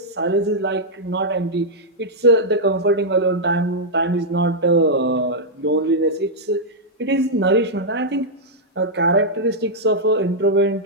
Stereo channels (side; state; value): both; normal; correlation -0.06